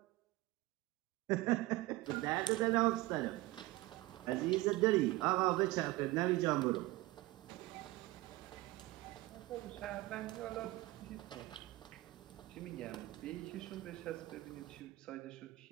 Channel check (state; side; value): quieter; left; 19.3 dB